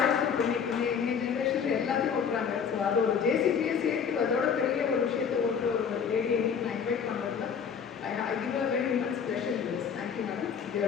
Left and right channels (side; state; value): right; quieter; 6.9 dB